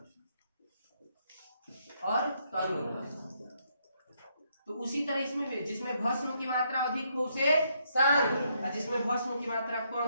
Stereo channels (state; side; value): inverted; both; correlation -0.74